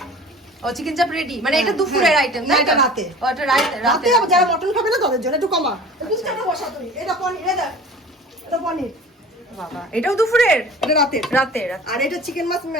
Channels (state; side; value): normal; both; correlation 0.42